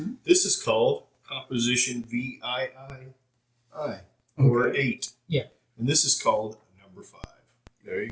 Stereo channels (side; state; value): both; identical; correlation 1.00